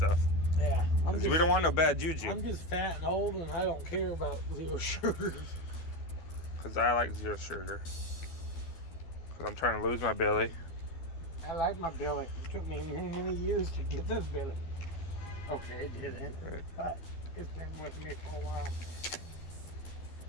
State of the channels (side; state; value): right; late; 12 ms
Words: Yeah. 'Cause we don't want no bad juju. I'm just fat and old, and I don't care about zero sugars. Because I like zero sugar. Because I'm trying to lose my belly. I like my belly. It took me many, many years to get this belly. Okay, it didn't. Right. But it's been with me for a while.